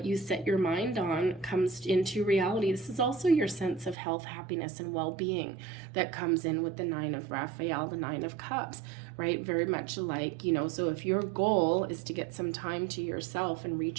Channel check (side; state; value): left; drops out; at 4.0 s